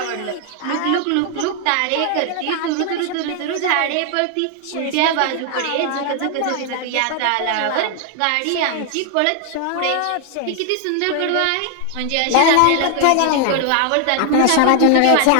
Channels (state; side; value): different; both; correlation 0.00